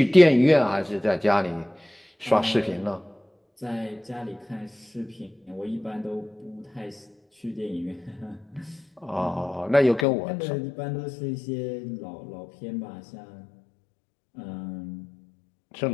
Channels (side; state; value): right; drops out; at 10.1 s